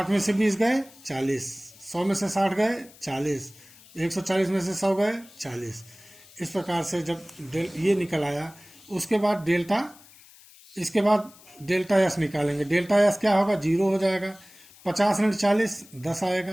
में से 20 गए 40, 100 में से 60 गए 40, 140 में से 100 गए 40। इस प्रकार से जब ये निकल आया, उसके बाद इसके बाद डेल्टा एस निकालेंगे। डेल्टा एस क्या होगा? 0 हो जाएगा। 50 ऋण 40 10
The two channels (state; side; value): noise; left; hiss, 24 dB below the sound